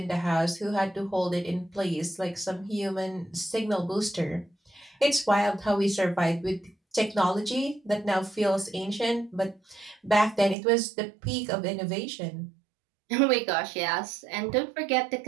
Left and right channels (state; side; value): drops out; left; at 10.6 s